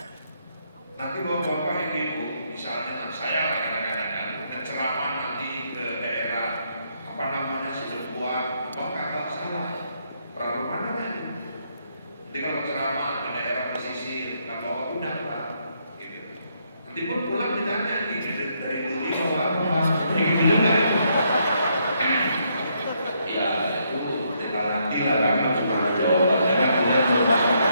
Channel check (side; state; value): both; inverted; correlation -0.74